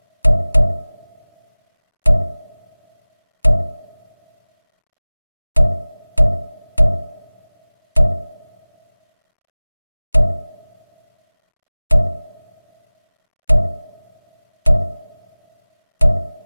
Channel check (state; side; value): inverted; both; correlation -1.00